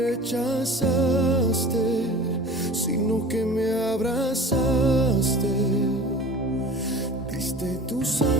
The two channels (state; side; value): normal; both; correlation 0.39